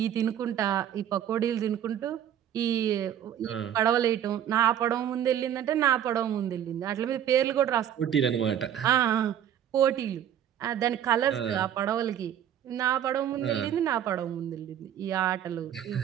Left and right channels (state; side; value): quieter; left; 10.2 dB